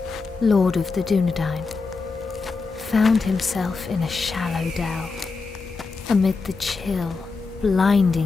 lord of the Dunedain, found himself in a shallow dell, amid the chill,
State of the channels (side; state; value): right; quieter; 4.3 dB